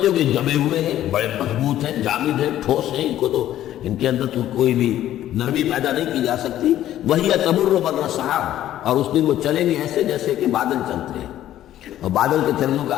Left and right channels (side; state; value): right; quieter; 12.6 dB